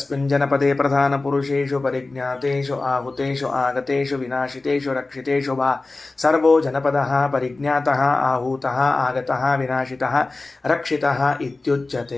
ಜನಪದೇ ಪ್ರಧಾನ ಪುರುಷೇಷು ಪರಿಜ್ಞಾತೇಷು ಆಹುತೇಷು ಆಗತೇಷು ವಿನಾಶಿತೇಷು ರಕ್ಷಿತೇಷು ವಾ ಸರ್ವೋ ಜನಪದಃ ಪರಿಜ್ಞಾತಃ ಆಹೂತಃ ಆಗತಃ ವಿನಾಶಿತಃ ರಕ್ಷಿತಃ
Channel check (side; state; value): right; quieter; 3.3 dB